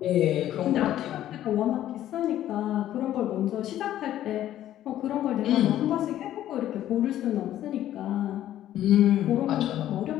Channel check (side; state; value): right; quieter; 12.5 dB